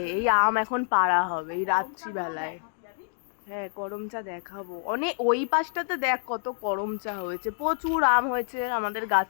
এই আম এখন পাড়া হবে এই রাত্রিবেলায়। হ্যাঁ করমচা দেখাবো, অনেক ওই পাশটাতে দেখ কত করমচা হয়েছে, প্রচুর আম হয়েছে আমাদের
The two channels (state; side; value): silent; right; digital silence